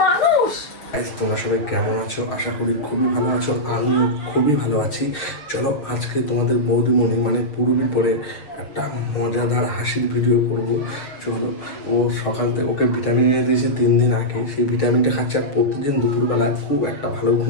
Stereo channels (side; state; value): right; late; 6.5 ms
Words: মানুষ। তোমরা সবাই কেমন আছো? আশা করি খুবই ভালো আছো, আমিও খুবই ভালো আছি। চলো আজকে তোমাদের বৌদিমণি মানে পুরবি পরে একটা মজাদার হাসির ভিডিও করব। চলো, ও সকাল থেকে ওকে ভিটামিন এনে দিয়েছে 3 দিন আগে, সেই ভিটামিনটা খাচ্ছে আর প্রতিদিন দুপুরবেলায় খুব একটা ভালো